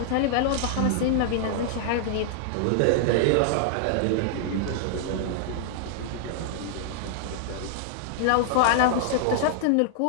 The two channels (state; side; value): different; both; correlation -0.01